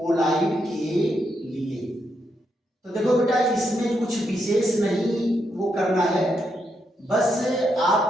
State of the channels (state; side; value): normal; both; correlation 0.81